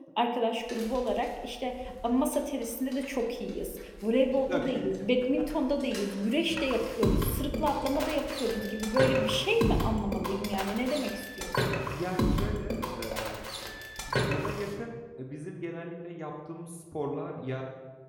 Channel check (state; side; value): identical; both; correlation 1.00